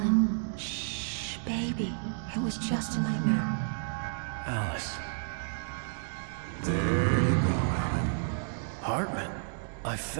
shh, baby. It was just a nightmare. Alice. There you go, Alan. Hartman. I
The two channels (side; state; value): left; silent; digital silence